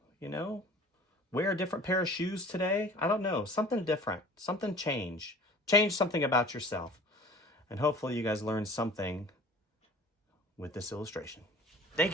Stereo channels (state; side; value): normal; both; correlation 0.45